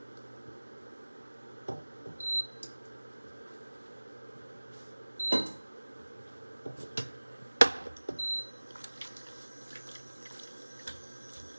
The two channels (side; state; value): both; inverted; correlation -1.00